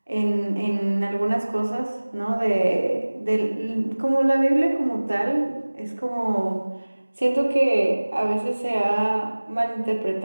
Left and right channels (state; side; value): inverted; both; correlation -1.00